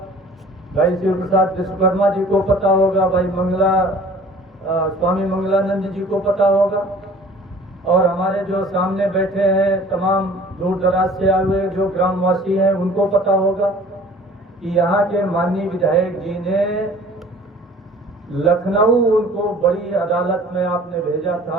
भाई शिव प्रसाद विश्वकर्मा जी को पता होगा, भाई स्वामी मंगलानंद जी को पता होगा, और हमारे जो सामने बैठे हैं तमाम दूर दराज से आए हुए जो ग्रामवासी हैं उनको पता होगा कि यहाँ के माननीय विधायक जी ने लखनऊ, उनको बड़ी अदालत में आपने भेजा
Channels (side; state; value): both; normal; correlation 0.48